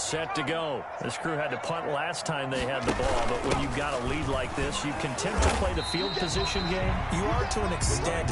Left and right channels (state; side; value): identical; both; correlation 1.00